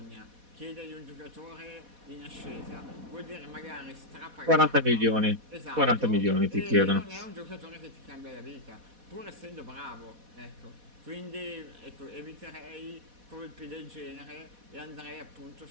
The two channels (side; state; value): left; late; 4.1 ms